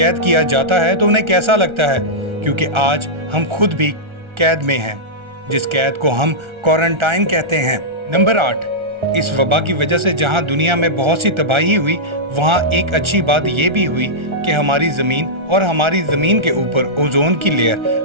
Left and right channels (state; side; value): late; left; 1.4 ms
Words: किया जाता है तो उन्हें कैसा लगता है, क्योंकि आज हम खुद भी कैद में हैं, जिस कैद को हम क्वारंटाइन कहते हैं। नंबर 8, इस वबा की वजह से जहां दुनिया में बहुत सी तबाही हुई, वहां एक अच्छी बात यह भी हुई कि हमारी ज़मीन और हमारी ज़मीन के ऊपर ओजोन की